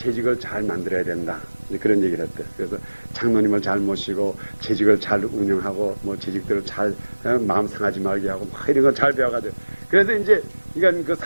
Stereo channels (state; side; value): inverted; both; correlation -1.00